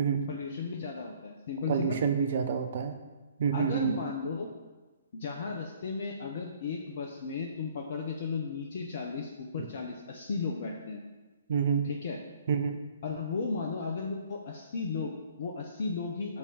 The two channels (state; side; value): inverted; both; correlation -0.56